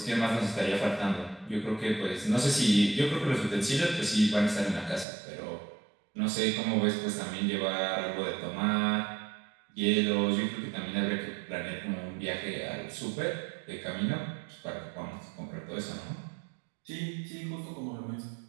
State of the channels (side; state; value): left; drops out; at 5.1 s